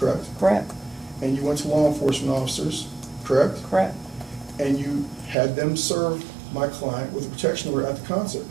Correct, And you went to law enforcement officers, correct? correct, And you had them serve my client with a protection order at the concert,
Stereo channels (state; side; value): drops out; left; at 5.4 s